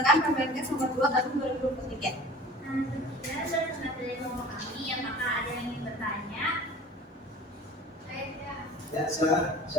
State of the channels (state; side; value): normal; both; correlation 0.43